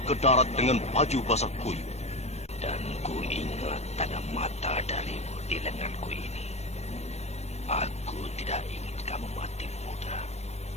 ke darat dengan baju basah kuyup. Dan ku ingat tanda mata darimu di lenganku ini.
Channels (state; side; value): late; right; 0.31 ms